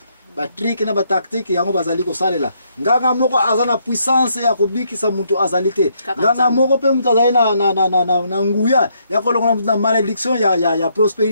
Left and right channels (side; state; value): both; inverted; correlation -0.73